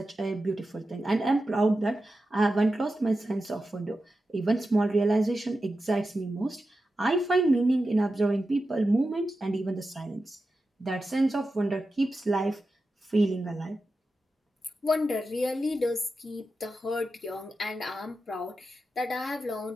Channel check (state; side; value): normal; both; correlation 0.91